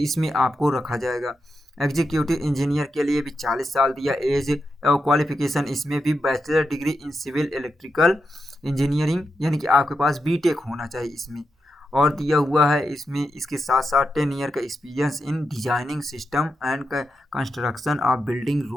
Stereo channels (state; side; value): normal; both; correlation 0.86